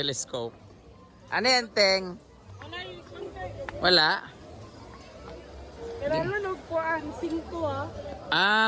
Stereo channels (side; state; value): both; identical; correlation 1.00